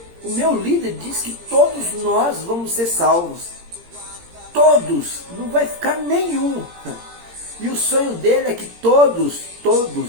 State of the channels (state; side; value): late; left; 17 ms